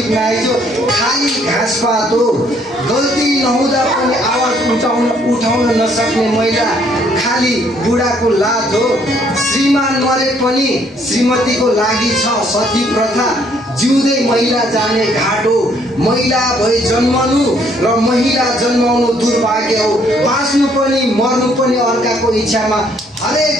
नआइजो खाली घाँसपात हो, गल्ती नहुँदा पनि आवाज उठाउन नसक्ने महिला खाली बुढाको लात हो, श्रीमान मरे पनि श्रीमतीको लागि छ सती प्रथा, जिउँदै महिला जाने घाट हो, महिला भई जन्मनु र महिला जन्माउनु दुर्भाग्य हो, बाँच्नु पनि मर्नु पनि अर्काको इच्छामा,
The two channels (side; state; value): both; normal; correlation 0.66